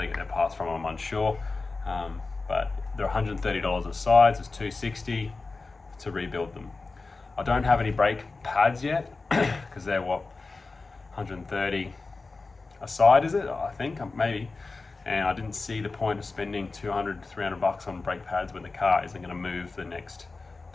get their parts from, I'm unsure. But they're $130 a side, so it's $260 to rebuild them. I don't have any brake pads yet, because they're what, $130 a side, is it? I think, maybe. And I didn't see the point of spending $200 to $300 on brake pads when the car isn't going to move for the next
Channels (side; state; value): right; quieter; 3.8 dB